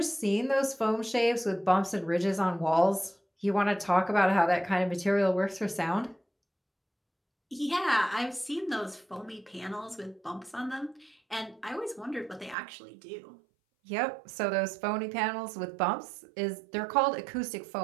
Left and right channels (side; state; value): left; drops out; at 12.6 s